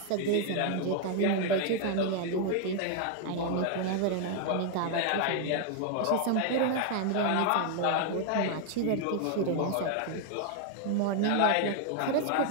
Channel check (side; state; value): both; different; correlation 0.00